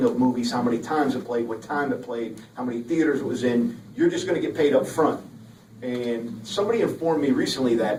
of movies, how many times it played, what time it played, how many theaters it was in. You're just going to get paid up front. And somebody informed me recently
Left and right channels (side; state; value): both; identical; correlation 1.00